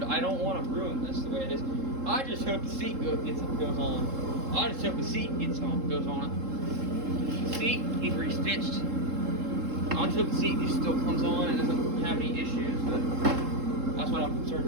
I don't want to ruin this the way it is. I just hope the seat goes on. I just hope the seat goes on it. The seat needs restitched. I just hope the seat just still comes on and doesn't have any issues, but that's what I'm concerned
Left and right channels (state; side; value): late; left; 3.7 ms